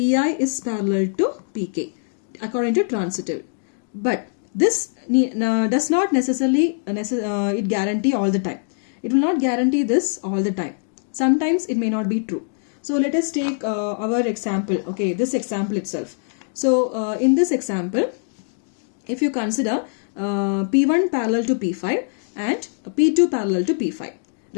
is parallel to Pk according to transitive. But this does not necessarily it guarantee all the time. It will not guarantee this all the time. Sometimes it may not be true. So let us take our example. Okay, this example itself. So in this example, if you consider P1 parallel to P5 and P2 parallel to P5,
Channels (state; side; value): silent; right; digital silence